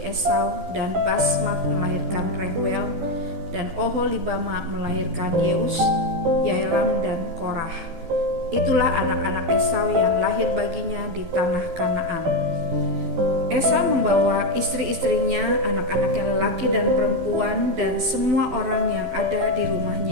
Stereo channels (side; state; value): left; late; 12 ms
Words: Esau dan Basmat melahirkan Rehuel dan Oholibama melahirkan Yeus, Yaelam dan Korah. Itulah anak-anak Esau yang lahir baginya di tanah Kanaan. Esau membawa istri-istrinya, anak-anaknya lelaki dan perempuan, dan semua orang yang ada di